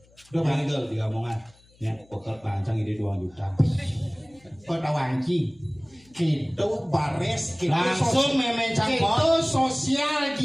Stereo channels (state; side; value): noise; left; hum, 29 dB below the sound